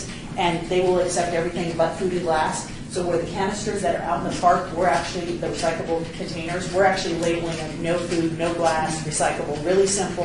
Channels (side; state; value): both; identical; correlation 1.00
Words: and they will accept everything but food and glass. So where the canisters that are out in the park, we're actually, the recyclable containers, we're actually labeling them no food, no glass, recyclable, really